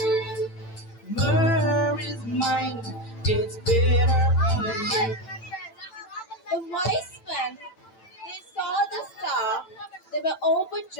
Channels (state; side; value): late; right; 9.0 ms